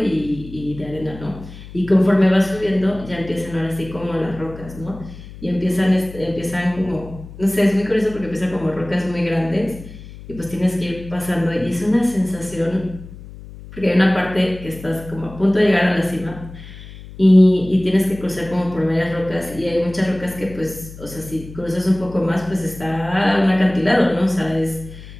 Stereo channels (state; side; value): noise; left; hum, 16 dB below the sound